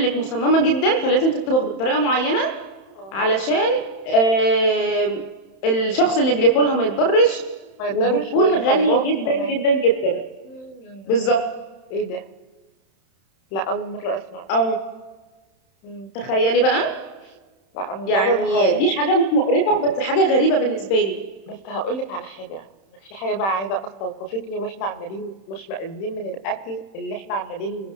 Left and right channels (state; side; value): late; right; 31 ms